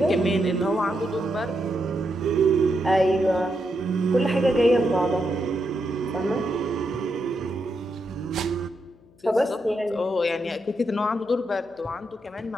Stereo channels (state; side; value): noise; left; hum, 29 dB below the sound